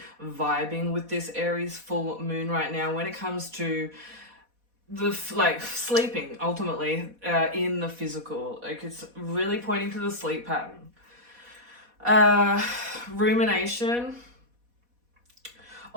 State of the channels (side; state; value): left; late; 4.1 ms